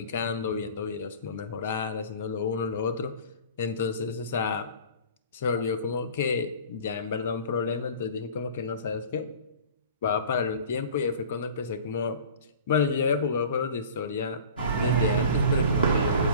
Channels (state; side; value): inverted; both; correlation -0.42